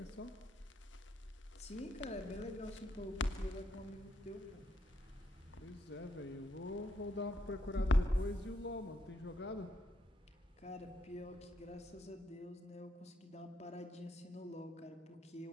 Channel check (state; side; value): normal; both; correlation 0.77